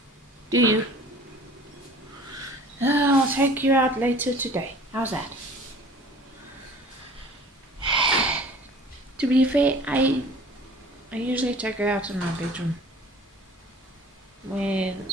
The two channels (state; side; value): normal; both; correlation 0.46